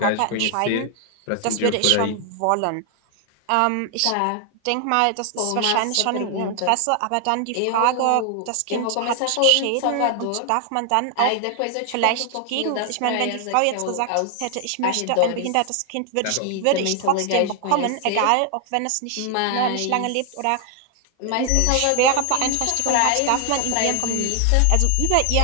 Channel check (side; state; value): both; different; correlation 0.00